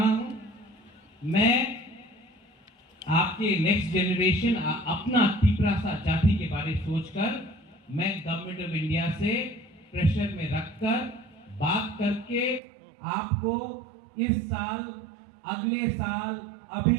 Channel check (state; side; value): drops out; left; at 12.6 s